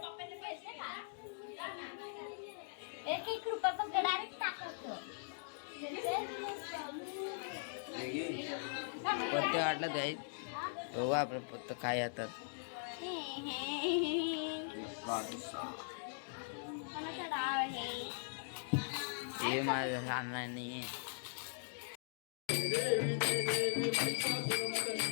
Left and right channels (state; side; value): silent; right; digital silence